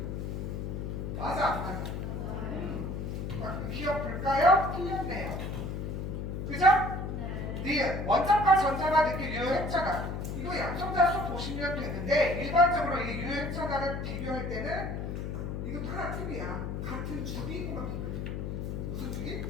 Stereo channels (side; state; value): left; noise; hum, 4 dB below the sound